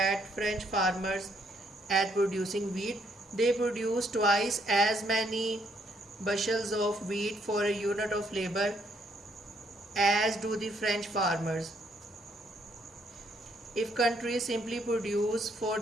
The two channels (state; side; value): normal; both; correlation 0.71